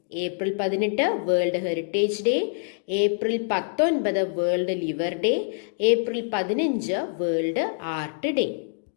April 18 World Heritage Day, April 19 World Liver day, April 15 world art day.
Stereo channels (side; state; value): right; silent; digital silence